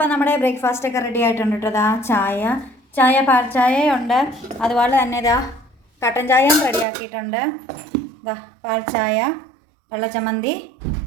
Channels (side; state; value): left; drops out; at 6.9 s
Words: നമ്മുടെ ബ്രേക്ക്ഫാസ്റ്റ് ഒക്കെ റെഡി ആയിട്ടുണ്ട് കേട്ടോ. ഇതാ ചായ പാൽ ചായയുണ്ട്, അതുപോലെ തന്നെ ഇതാ കട്ടൻ ചായയും റെഡിയാക്കിയിട്ടുണ്ട്. ഇതാ പാൽ ചായ, വെള്ളച്ചമ്മന്തി,